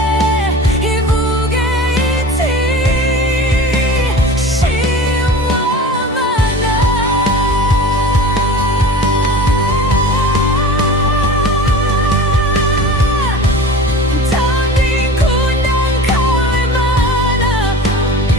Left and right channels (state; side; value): normal; both; correlation 0.36